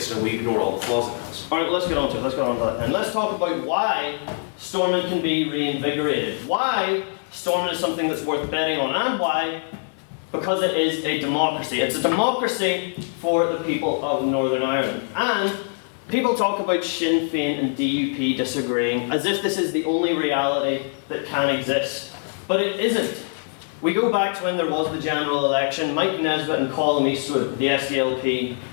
and we ignore all the flaws it has. Alright, let's get on to it, And let's talk about why Stormont can be reinvigorated, why Stormont is something that's worth betting on, and why because it is a democracy. It's a democracy for the people of Northern Ireland. And people talk about Sinn Féin and DUP disagreeing as if this is the only reality that can exist. But it isn't. We go back to when there was the general election. Mike Nesbitt and Colin Eastwood, the SDLP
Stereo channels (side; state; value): right; silent; 63 dB below the other